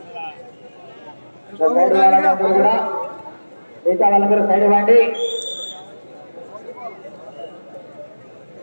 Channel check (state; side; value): inverted; both; correlation -1.00